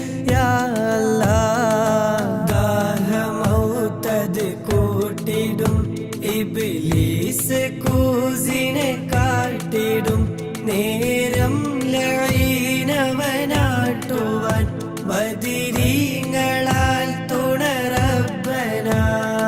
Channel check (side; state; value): both; identical; correlation 1.00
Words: يا الله ദാഹമൗതത് കൂട്ടിടും ഇബ്ലീസ് കൂസിനെ കാട്ടിടും നേരം ലഈനവനാട്ടുവാൻ ബദിരീങ്ങളാൽ തുണറബ്ബന